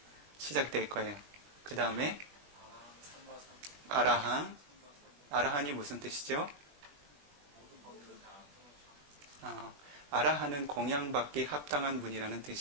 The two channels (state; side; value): late; left; 20 ms